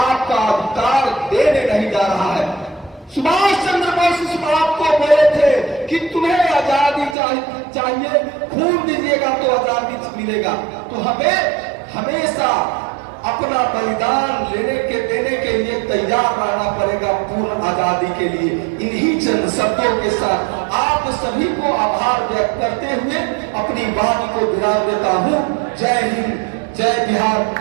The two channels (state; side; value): drops out; left; at 7.2 s